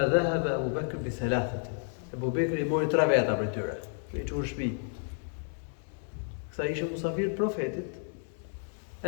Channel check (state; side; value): silent; right; 57 dB below the other